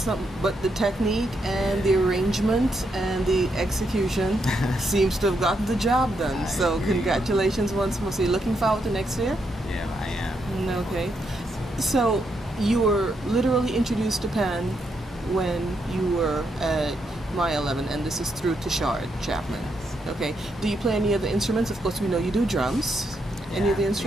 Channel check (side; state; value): both; normal; correlation 0.79